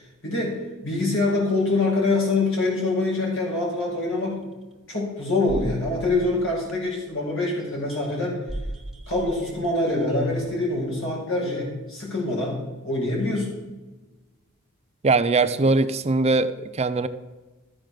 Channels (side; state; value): both; normal; correlation 0.43